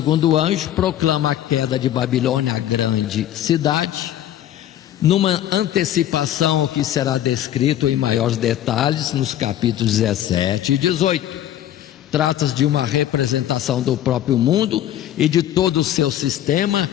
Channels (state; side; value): quieter; right; 12.0 dB